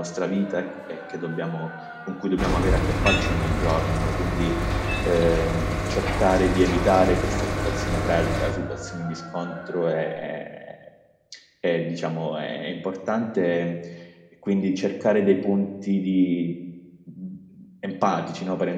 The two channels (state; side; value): identical; both; correlation 1.00